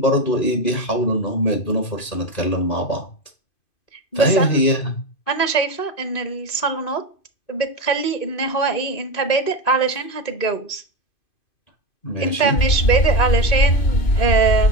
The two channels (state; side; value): late; right; 2.5 ms